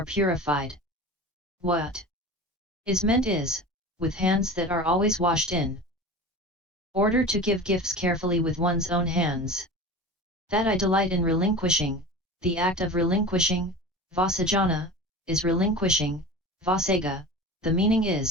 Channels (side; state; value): both; normal; correlation 0.33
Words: purified. What is meant is, with hands that are always washed in order to give gifts carefully with one's own hands. That I delight in relinquishing, the act of relinquishing, vasajana, is relinquishing, vasaga, the meaning